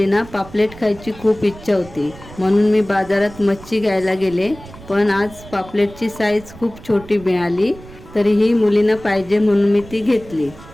पापलेट खायची खूप इच्छा होती, म्हणून मी बाजारात मच्छी घ्यायला गेले. पण आज पापलेटची साईज खूप छोटी मिळाली. तरीही मुलींना पाहिजे म्हणून मी ती घेतली.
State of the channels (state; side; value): noise; right; rumble, 19 dB below the sound